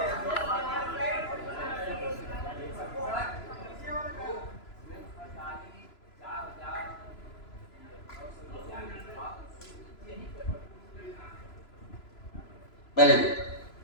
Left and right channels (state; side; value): late; right; 3.0 ms